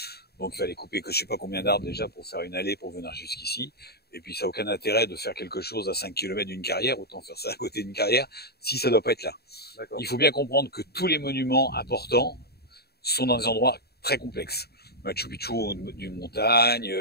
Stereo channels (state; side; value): late; right; 0.46 ms